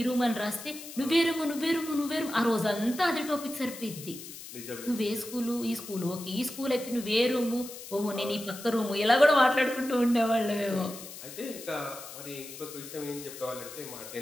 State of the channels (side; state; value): left; noise; hiss, 13 dB below the sound